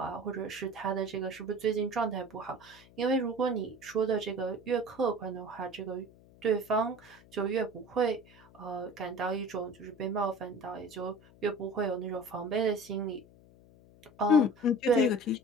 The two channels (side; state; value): left; noise; hum, 24 dB below the sound